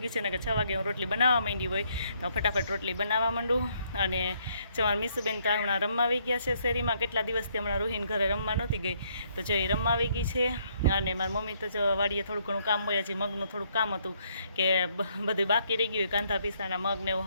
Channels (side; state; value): both; inverted; correlation -0.69